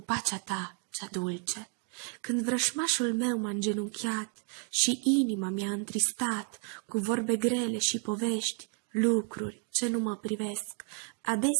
Ta cea dulce. Când vrășmașul meu m-a îngenunchiat și inima mi-a întristat cu vorbe grele și povești, lucruri ce nu mă privesc,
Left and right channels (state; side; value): quieter; left; 36.2 dB